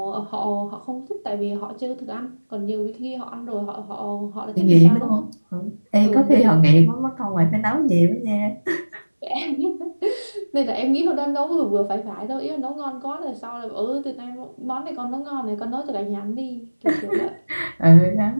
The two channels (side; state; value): both; inverted; correlation -1.00